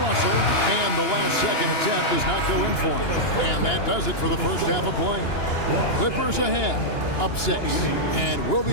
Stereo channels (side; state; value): right; late; 2.9 ms